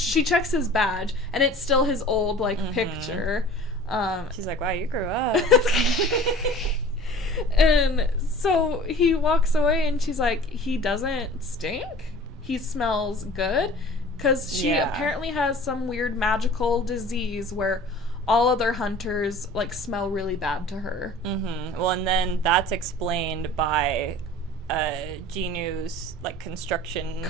his badge, and it's still his old like picture. She's like, "Wow, you grew up." And so he walks away, and she's like, "He doesn't stink. He smells good." Because she apparently has some weird magical disease where all other hunters, like, smell really bad to her. Well, and then that's explained by Jin-woo's, like, construction...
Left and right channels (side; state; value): both; normal; correlation 0.44